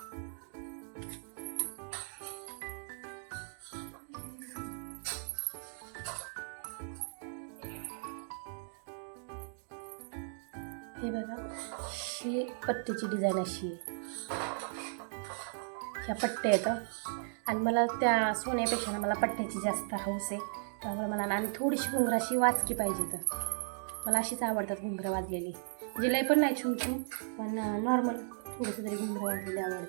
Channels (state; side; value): silent; left; digital silence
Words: हे बघा, ही पट्टीची डिझाईन अशी आहे. ह्या पट्ट्या येतं आणि मला त्या सोन्यापेक्षा ना मला पट्ट्याची जास्त हौस आहे. त्यामुळे मला ना आणि थोडीशी घुंगराशी वाचकी पाहिजे. तर मला अशीच आवडतात घुंगरं वाजलेली, म्हणजे लय पण नाही छून छून, पण नॉर्मल थोडंसं तरी घुंगरं वाजलेली